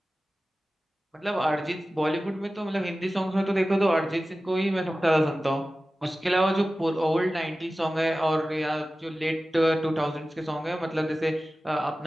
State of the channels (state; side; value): normal; both; correlation 0.96